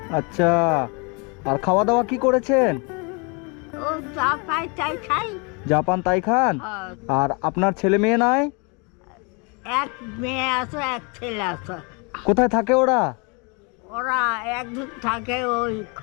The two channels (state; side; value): quieter; right; 32.3 dB